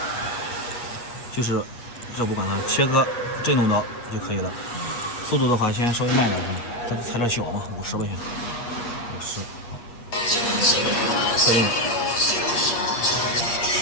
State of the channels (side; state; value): right; late; 8.3 ms